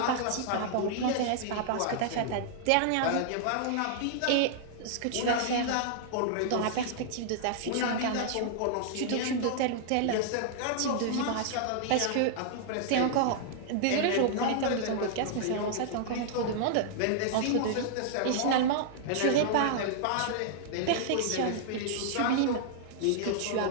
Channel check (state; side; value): different; both; correlation -0.01